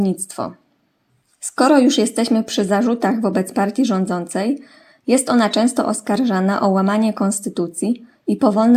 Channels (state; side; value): identical; both; correlation 1.00